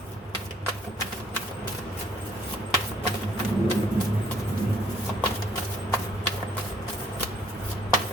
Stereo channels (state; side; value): normal; both; correlation 0.63